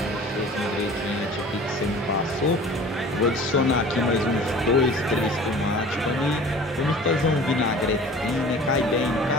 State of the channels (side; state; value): both; normal; correlation 0.44